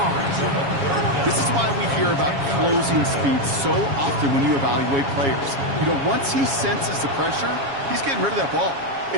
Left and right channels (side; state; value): left; late; 7.3 ms